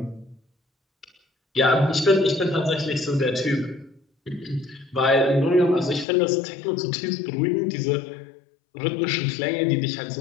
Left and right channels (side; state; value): right; drops out; at 6.1 s